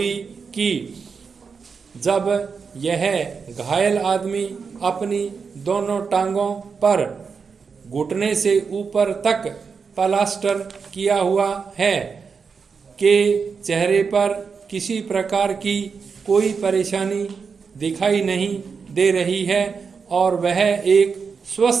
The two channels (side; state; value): left; quieter; 5.5 dB